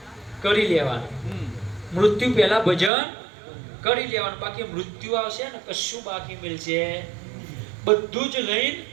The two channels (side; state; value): left; drops out; at 2.9 s